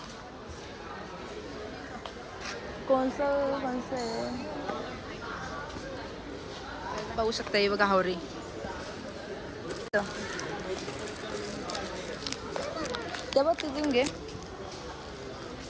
कोणचं आहे पाहू शकता. हे बघा हावरी. ते बघ तिथून घे.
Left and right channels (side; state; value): both; identical; correlation 1.00